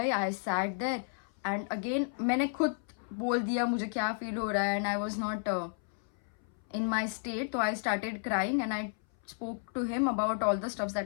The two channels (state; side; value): silent; right; 56 dB below the other